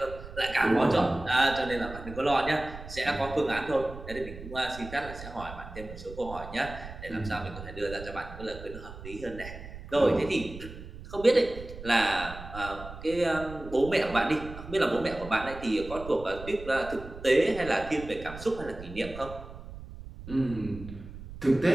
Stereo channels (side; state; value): right; noise; rumble, 13 dB below the sound